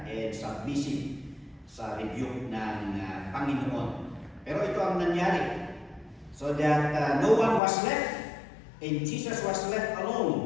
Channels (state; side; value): drops out; right; at 7.6 s